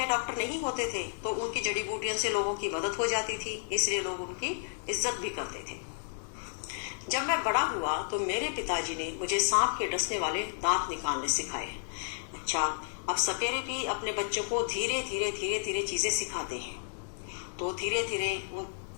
डॉक्टर नहीं होते थे, तो उनकी जड़ी बूटियों से लोगों की मदद हो जाती थी, इसलिए लोग उनकी इज्जत भी करते थे। जब मैं बड़ा हुआ तो मेरे पिताजी ने मुझे सांप के डसने वाले दांत निकालने सिखाए। अच्छा, अब सपेरे भी अपने बच्चों को धीरे धीरे चीजें सिखाते हैं। तो धीरे धीरे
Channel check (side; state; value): right; silent; 56 dB below the other